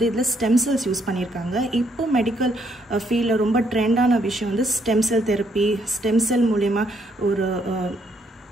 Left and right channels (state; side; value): normal; both; correlation 0.71